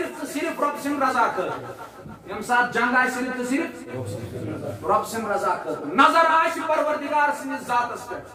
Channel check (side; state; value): both; identical; correlation 1.00